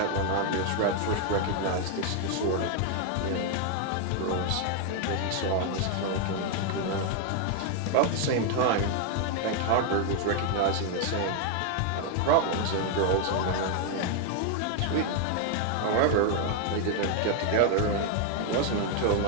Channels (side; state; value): both; different; correlation 0.00